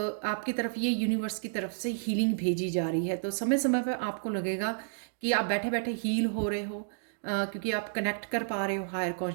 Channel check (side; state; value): left; silent; digital silence